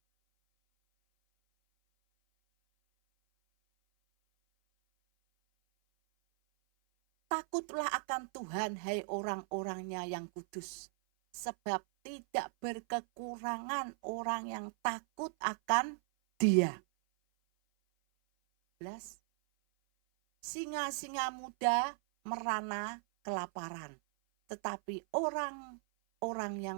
Takutlah akan Tuhan, hai orang-orangnya yang kudus, sebab tidak berkekurangan orang yang takut akan Dia. 11. Singa-singa muda merana kelaparan, tetapi orang-orang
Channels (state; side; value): silent; left; 53 dB below the other